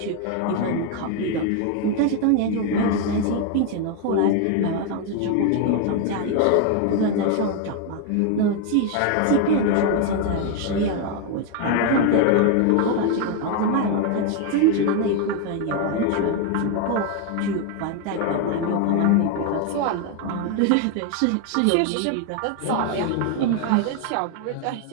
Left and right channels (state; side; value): different; both; correlation 0.01